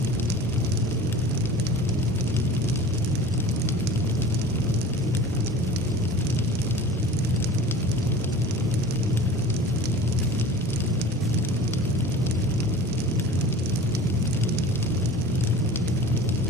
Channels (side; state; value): both; normal; correlation 0.40